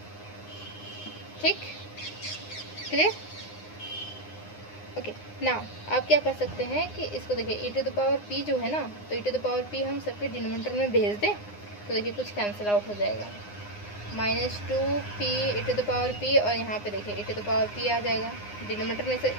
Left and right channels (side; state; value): right; late; 9.7 ms